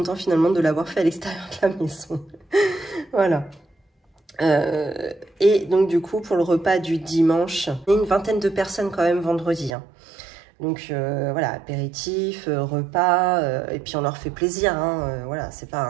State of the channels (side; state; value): left; drops out; at 9.7 s